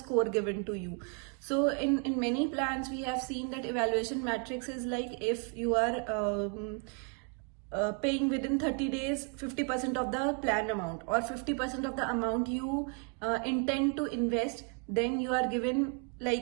given to you. So in many plans we have seen that evaluation matrix is like, if you are paying within 30 days 50% of the plan amount, or 50% of the amount you intend to invest, then you are given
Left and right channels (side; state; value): left; quieter; 38.1 dB